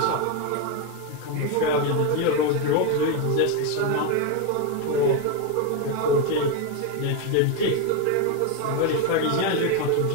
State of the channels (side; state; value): both; different; correlation 0.02